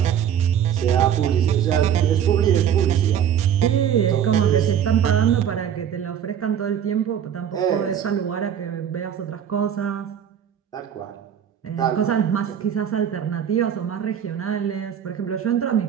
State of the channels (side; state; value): left; quieter; 9.1 dB